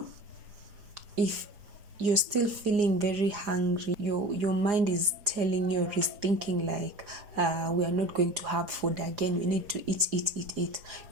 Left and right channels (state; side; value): late; left; 4.9 ms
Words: if you're still feeling very hungry, your mind is telling you, or is thinking like, we are not going to have food again, we need to eat.